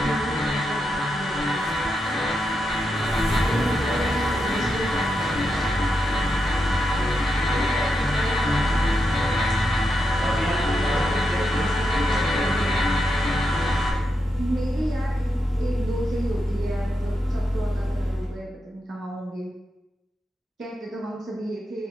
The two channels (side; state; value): both; normal; correlation 0.85